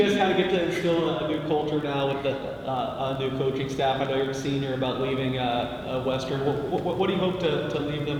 get to instill a new culture now with the new coaching staff. I know you're a senior about leaving Western. What do you hope to leave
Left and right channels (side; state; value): both; identical; correlation 1.00